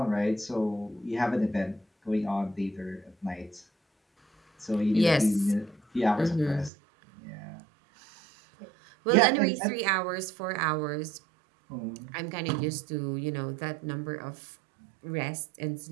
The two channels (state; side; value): drops out; left; at 6.7 s